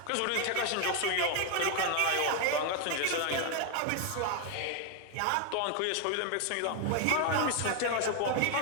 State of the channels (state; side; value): different; both; correlation 0.01